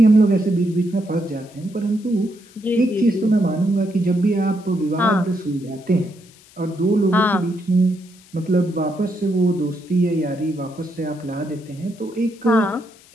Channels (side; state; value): left; noise; hiss, 26 dB below the sound